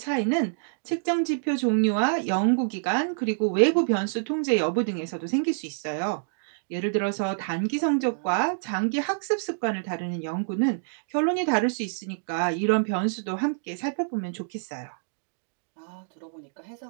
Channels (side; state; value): left; silent; digital silence